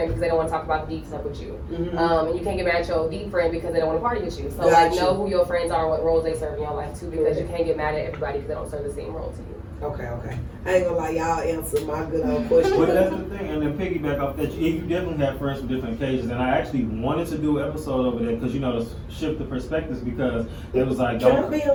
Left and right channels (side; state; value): both; identical; correlation 1.00